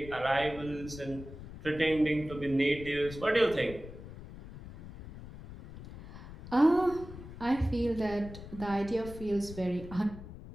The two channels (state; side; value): noise; left; rumble, 14 dB below the sound